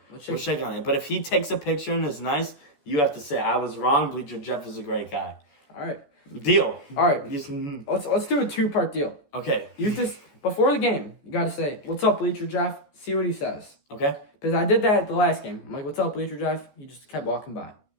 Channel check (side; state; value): right; late; 14 ms